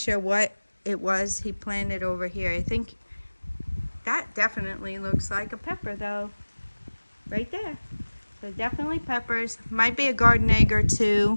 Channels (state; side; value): inverted; both; correlation -1.00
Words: what it was he planted over here. I think that definitely looks like a pepper, though. Right there. So definitely peppers. Might be a garden egg or